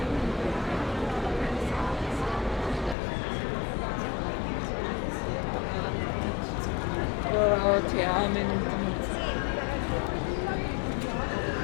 Oh, ti amo.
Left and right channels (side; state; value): right; drops out; at 3.0 s